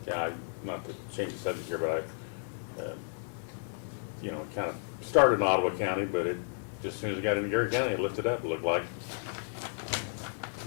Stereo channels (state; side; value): silent; right; digital silence